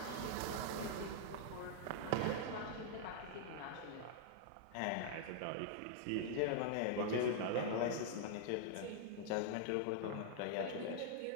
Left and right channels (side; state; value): both; different; correlation -0.01